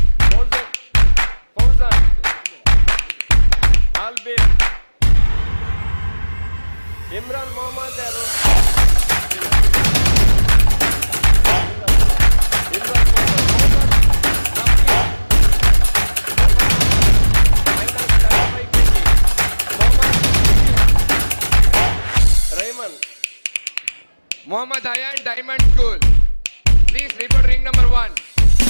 ಫೌಜಾನ್ ಆಲ್ಬೇರ್, ಇಮ್ರಾನ್ ಮೊಹಮ್ಮದ್ ಯಾರು, Imran Mohammad Ayan Diamond School. Please report ring number 1.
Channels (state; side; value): inverted; both; correlation -1.00